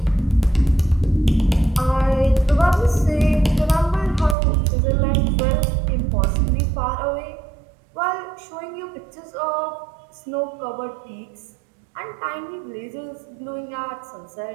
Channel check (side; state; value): left; drops out; at 4.4 s